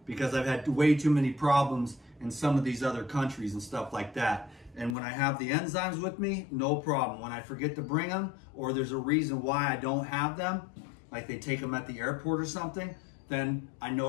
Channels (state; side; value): drops out; right; at 5.0 s